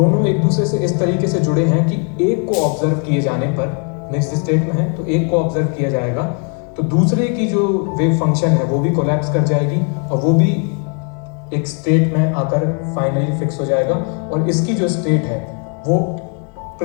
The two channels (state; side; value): quieter; right; 38.1 dB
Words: एक दूसरे से इस तरीके से जुड़े हैं कि एक को ऑब्जर्व किए जाने पर, मिक्स्ड स्टेट में है तो एक को ऑब्जर्व किया जाएगा तो दूसरे की जो वेव फंक्शन है वो भी कोलैप्स कर जाएगी और वो भी एक स्टेट में आकर फाइनली फिक्स हो जाएगा। और इसकी जो स्टेट है वो